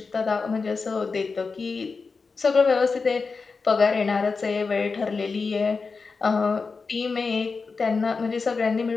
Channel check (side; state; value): right; quieter; 4.6 dB